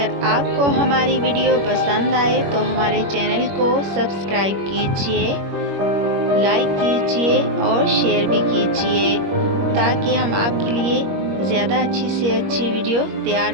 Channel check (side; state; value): left; late; 21 ms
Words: आपको हमारी वीडियो पसंद आए तो हमारे चैनल को सब्सक्राइब कीजिए, लाइक कीजिए और शेयर भी कीजिए ताकि हम आपके लिए ज़्यादा अच्छी से अच्छी वीडियो तैयार